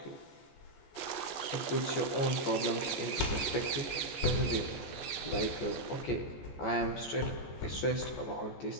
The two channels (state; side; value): late; right; 14 ms